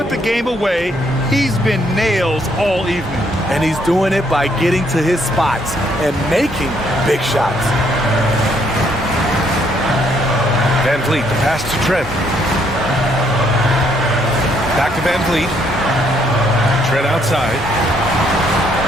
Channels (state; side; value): normal; both; correlation 0.70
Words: the game away, he's been nails all evening. And he's doing it by getting to his spots and making big shots. Van Vliet, the pass to Trent. Back to Van Vliet. Trent outside.